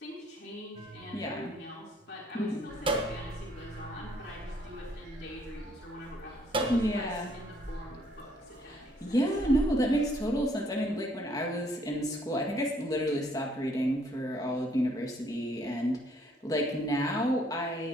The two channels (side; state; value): both; normal; correlation 0.65